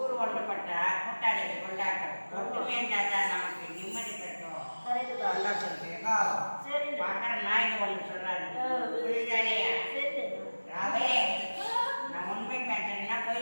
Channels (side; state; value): both; inverted; correlation -1.00